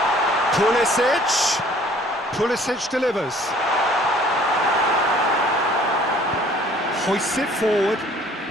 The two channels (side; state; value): both; normal; correlation 0.55